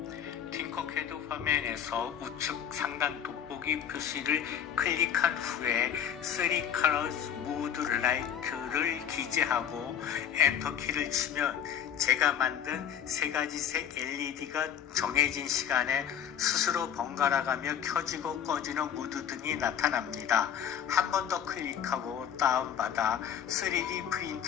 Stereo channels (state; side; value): quieter; right; 8.9 dB